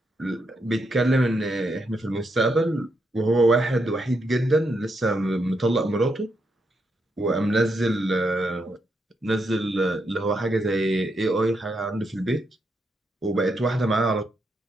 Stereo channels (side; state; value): both; normal; correlation 0.81